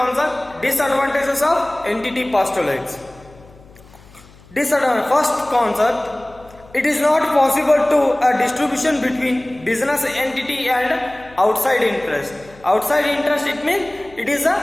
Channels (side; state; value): left; noise; hum, 24 dB below the sound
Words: disadvantages of entity postulates. First concept, it is not possible to a distribution between business entity and outside interest. Outside interest, it means it is